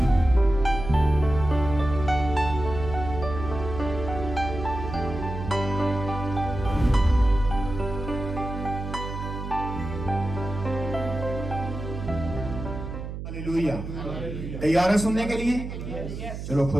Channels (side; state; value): right; noise; hum, 7 dB below the sound